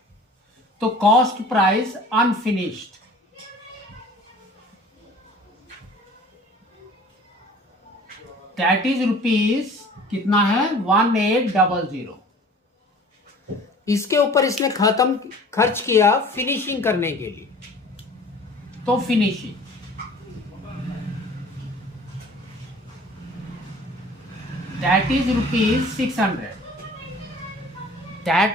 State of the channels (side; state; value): both; normal; correlation 0.47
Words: तो cost price unfinished that is rupees कितना है? 1800. इसके ऊपर इसने खर्च किया फिनिशिंग करने के लिए. तो finishing that is rupees 600.